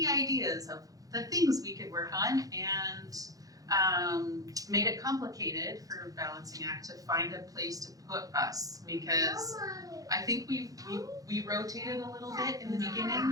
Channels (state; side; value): late; left; 0.17 ms